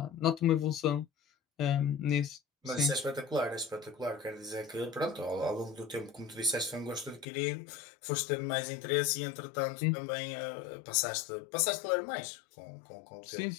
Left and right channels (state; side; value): drops out; right; at 7.2 s